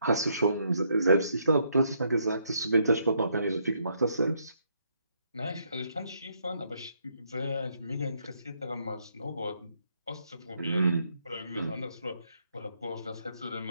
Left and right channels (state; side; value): inverted; both; correlation -0.74